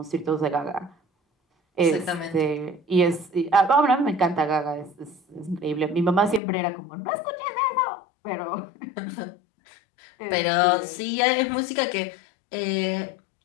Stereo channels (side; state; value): right; drops out; at 6.4 s